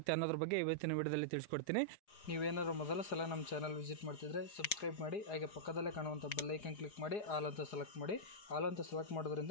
ಅನ್ನೋದ್ರ ಬಗ್ಗೆ ಇವತ್ತಿನ ವಿಡಿಯೋದಲ್ಲಿ ತಿಳಿಸ್ಕೊಡ್ತೀನಿ. ನೀವೇನಾದ್ರು ಮೊದಲ ಸಲ ನಮ್ಮ ಚಾನಲ್ ವಿಸಿಟ್ ಮಾಡ್ತಿದ್ರೆ ಸಬ್ಸ್ಕ್ರೈಬ್ ಮಾಡಿ, ಹಾಗೆ ಪಕ್ಕದಲ್ಲೇ ಕಾಣುವಂಥ ಬೆಲ್ ಐಕನ್ ಕ್ಲಿಕ್ ಮಾಡಿ ಆಲ್ ಅಂತ ಸೆಲೆಕ್ಟ್ ಮಾಡಿ. ಆಲ್ ಅಂತ ಸೆಲೆಕ್ಟ್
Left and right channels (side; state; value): right; late; 4.8 ms